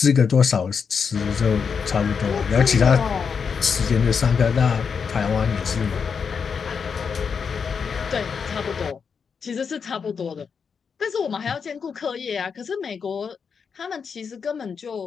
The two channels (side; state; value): right; quieter; 6.1 dB